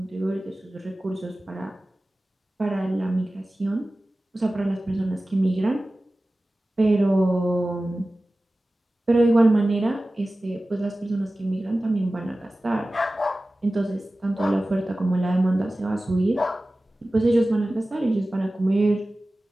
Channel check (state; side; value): normal; both; correlation 0.96